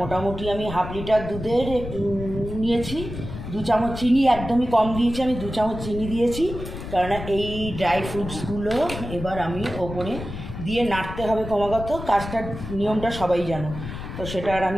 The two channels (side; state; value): left; noise; rumble, 9 dB below the sound